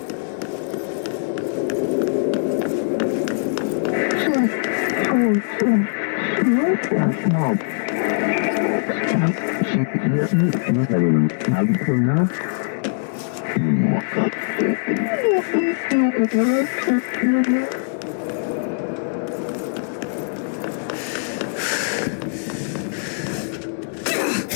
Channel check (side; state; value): right; silent; digital silence